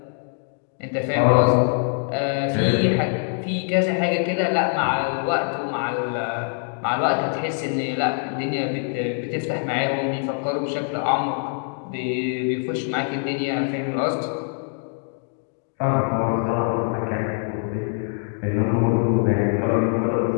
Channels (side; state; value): right; silent; 63 dB below the other